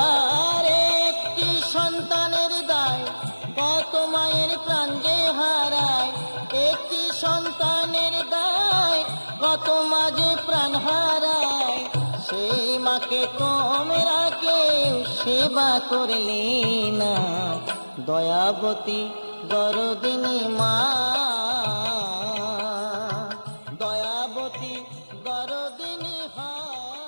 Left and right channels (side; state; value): both; inverted; correlation -1.00